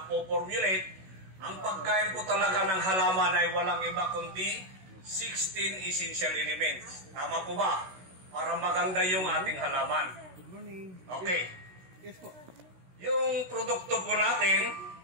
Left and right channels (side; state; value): left; late; 16 ms